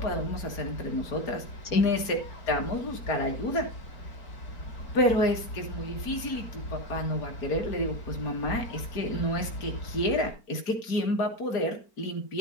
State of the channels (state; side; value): late; right; 4.4 ms